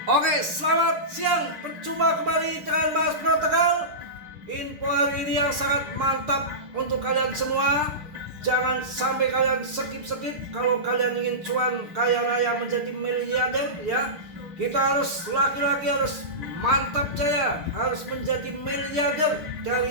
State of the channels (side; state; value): left; late; 6.7 ms